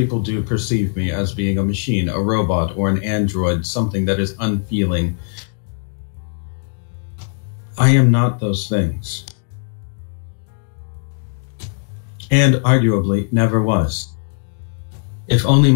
do perceive me as being a machine, a robot, or an android, something that is unfeeling. I am not those things. And arguably never was. If only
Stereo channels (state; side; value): silent; right; digital silence